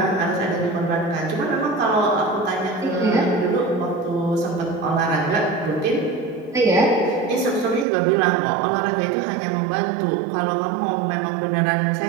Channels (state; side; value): drops out; left; at 7.9 s